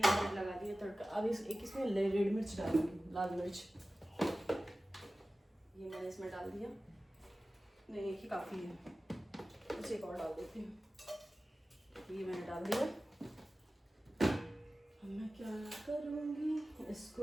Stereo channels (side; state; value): both; normal; correlation 0.96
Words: मैंने लगा दिया तड़का। अब इसमें रेड मिर्च डालूंगी, लाल मिर्च, ये मैंने इसमें डाल दिया। नहीं एक ही काफ़ी है, कुछ एक और डाल देती हूँ। ये मैंने डाल दिया। अब मैं क्या करूँगी,